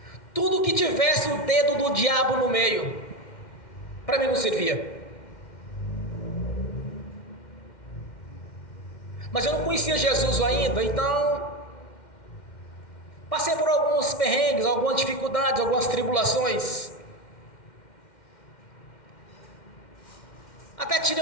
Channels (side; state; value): right; late; 2.1 ms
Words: tudo que tivesse o dedo do diabo no meio, para mim não servia. Mas eu não conhecia Jesus ainda, então passei por alguns perrengues, algumas dificuldades, algumas tribulações. Até